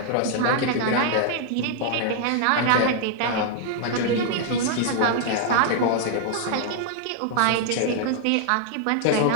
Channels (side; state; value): both; different; correlation -0.01